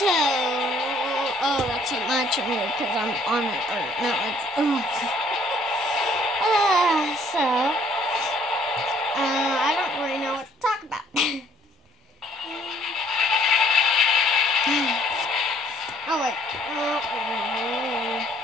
So, oh, that's not much of me because I'm on it. Or no, it's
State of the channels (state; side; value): normal; both; correlation 0.62